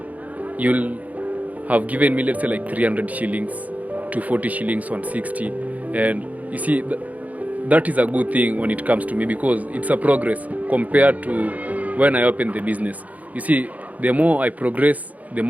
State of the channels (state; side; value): late; left; 0.074 ms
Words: you'll have given me, let's say, like 300 shillings, 240 shillings, 160. And you see, that is a good thing when it comes to me, because it's a progress compared to when I opened the business. You see, the more I progress, the